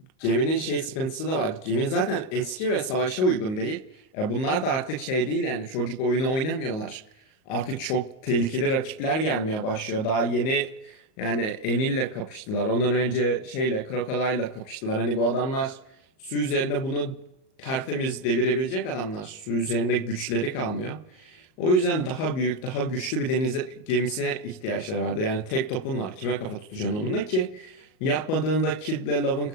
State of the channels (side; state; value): right; late; 38 ms